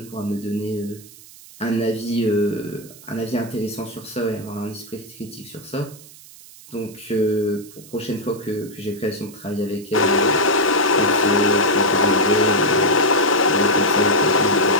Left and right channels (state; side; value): noise; right; hiss, 20 dB below the sound